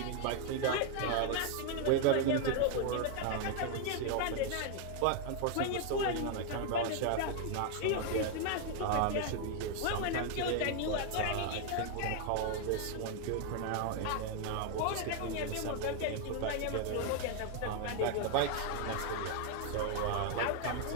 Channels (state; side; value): different; both; correlation 0.00